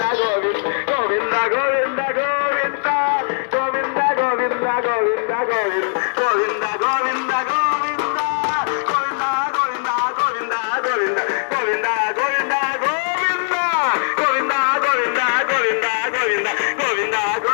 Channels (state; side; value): silent; right; digital silence